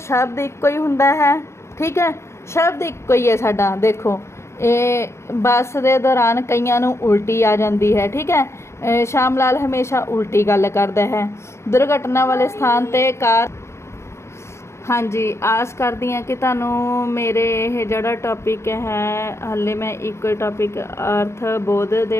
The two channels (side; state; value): right; late; 0.13 ms